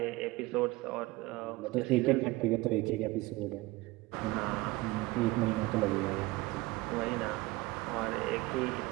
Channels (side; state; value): left; quieter; 20.4 dB